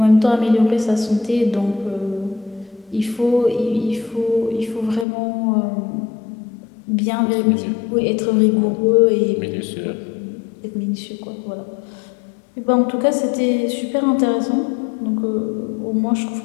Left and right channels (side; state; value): right; drops out; at 5.1 s